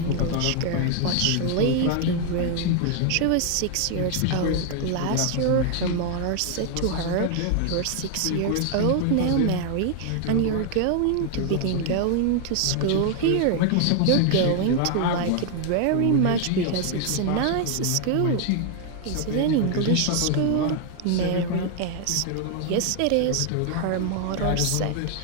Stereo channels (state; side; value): different; both; correlation 0.00